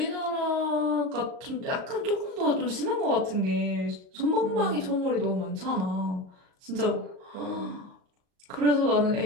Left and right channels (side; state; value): left; late; 38 ms